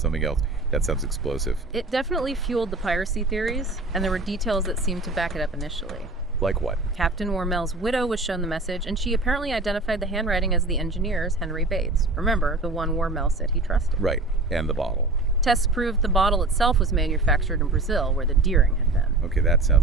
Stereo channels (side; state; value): left; quieter; 3.0 dB